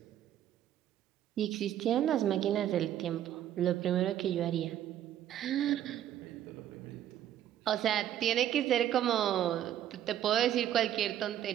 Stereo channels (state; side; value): quieter; left; 11.3 dB